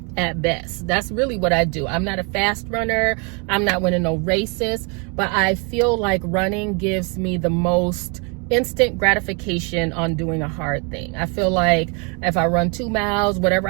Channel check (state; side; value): quieter; left; 33.9 dB